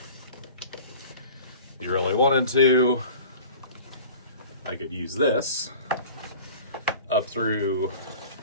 if you really wanted to, I could use this up through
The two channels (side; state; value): both; inverted; correlation -0.41